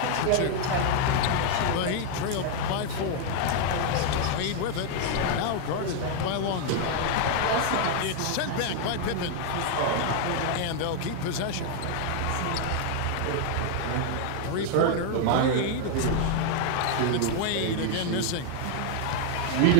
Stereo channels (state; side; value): different; both; correlation 0.00